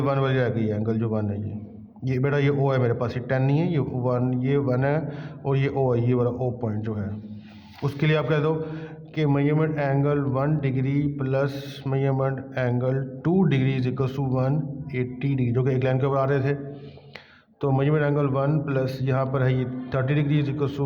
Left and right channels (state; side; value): identical; both; correlation 1.00